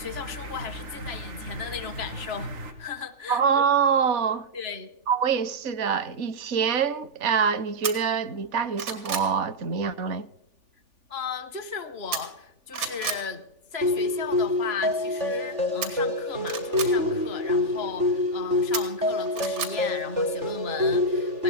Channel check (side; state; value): left; late; 3.4 ms